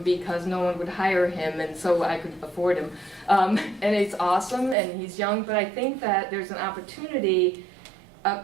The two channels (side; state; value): left; drops out; at 4.8 s